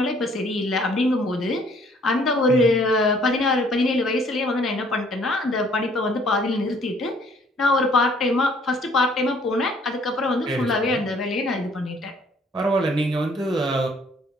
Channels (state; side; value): normal; both; correlation 0.60